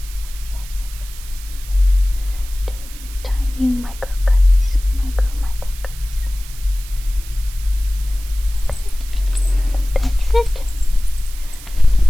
Do tiny micro cuts. Micro cuts. Okay. That's it.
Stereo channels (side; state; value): right; noise; hiss, 17 dB below the sound